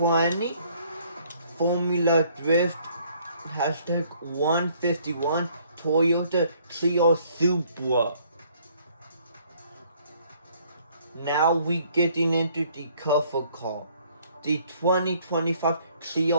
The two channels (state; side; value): inverted; both; correlation -0.62